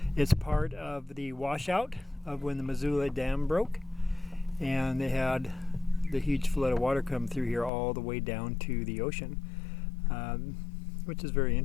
It's part of the washout of when the Missoula Dam broke, and they had the huge flood of water come through here all the way down to the ocean, which is very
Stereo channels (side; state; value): right; drops out; at 7.7 s